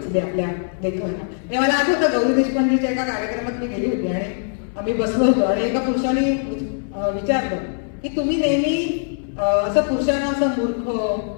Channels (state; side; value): silent; right; 65 dB below the other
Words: आपल्या लेखनाला. हे मला आठवतं गौरी देशपांडेच्या एका कार्यक्रमात मी गेली होती आणि आम्ही बसलो होतो आणि एका पुरुषाने विचारलं की तुम्ही नेहमी असं पुरुषांना असं मूर्ख